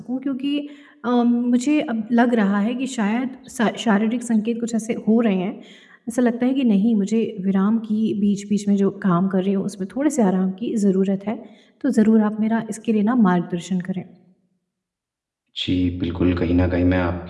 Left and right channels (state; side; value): identical; both; correlation 1.00